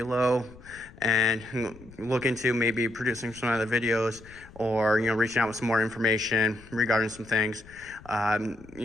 and look into maybe producing some other videos, or, you know, reaching out with some more information regarding some things.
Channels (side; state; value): left; noise; rumble, 21 dB below the sound